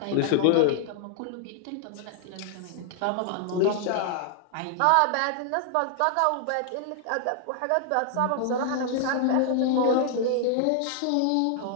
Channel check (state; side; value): different; both; correlation 0.00